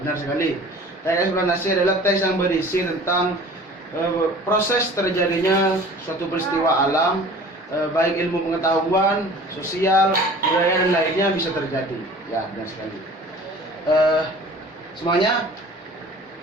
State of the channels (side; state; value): both; normal; correlation 0.45